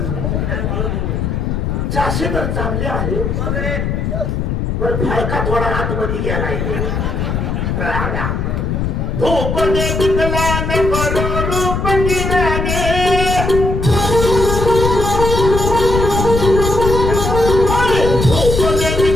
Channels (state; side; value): noise; left; rumble, 1 dB below the sound